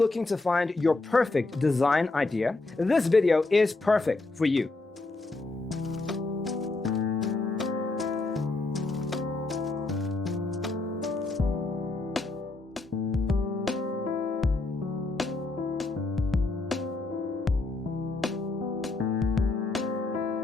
to find your perfect design idea? This video is perfect for you.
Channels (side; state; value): right; quieter; 3.3 dB